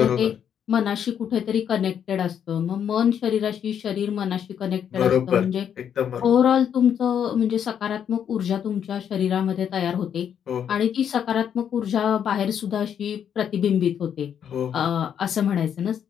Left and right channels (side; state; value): right; quieter; 8.6 dB